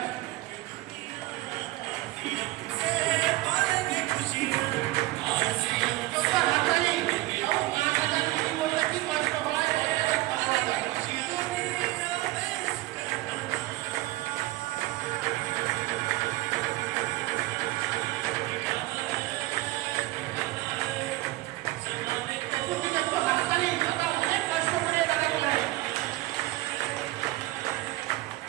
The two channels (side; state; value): left; quieter; 18.4 dB